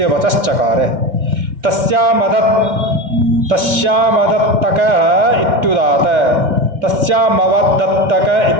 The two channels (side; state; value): left; late; 2.3 ms